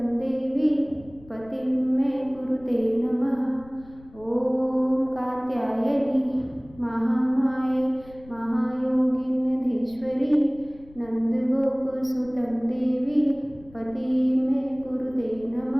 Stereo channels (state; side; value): noise; left; rumble, 23 dB below the sound